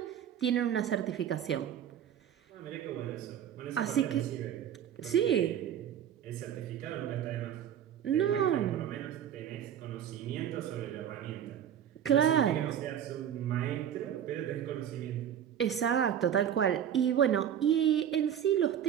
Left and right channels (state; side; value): quieter; left; 9.6 dB